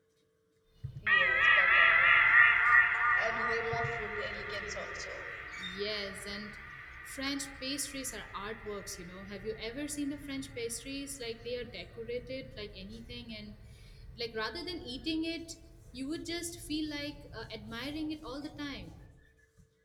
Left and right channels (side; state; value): both; identical; correlation 1.00